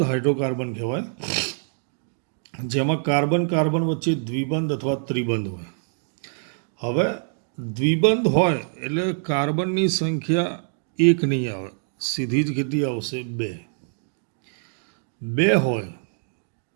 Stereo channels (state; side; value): silent; left; 62 dB below the other